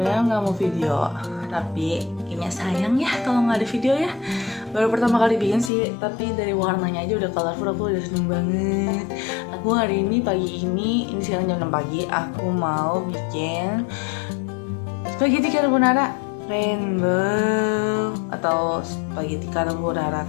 nggak mau video, tapi kayaknya sayang ya kalau nggak ada video ya. Baru pertama kali bikin sih, tapi dari warnanya aja udah colorful, aku udah seneng banget. Aku hari ini pagi ini sekarang jam 6 pagi, aku mau bikin spaghetti carbonara rainbow atau spaghetti carbonara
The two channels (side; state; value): right; drops out; at 5.7 s